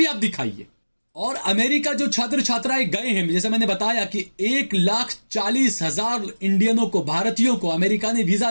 आप दिखाइए। और अमेरिका जो छात्र छात्राएं गए हैं, जैसे मैंने बताया कि 1,40,000 इंडियनों को, भारतीयों को अमेरिका ने वीजा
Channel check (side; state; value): both; inverted; correlation -1.00